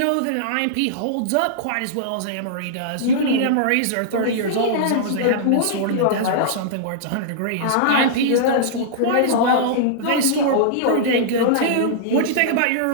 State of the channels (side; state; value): both; different; correlation -0.02